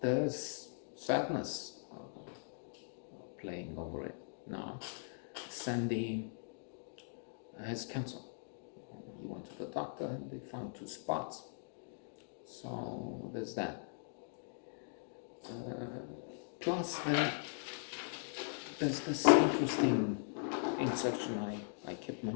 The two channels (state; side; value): silent; right; digital silence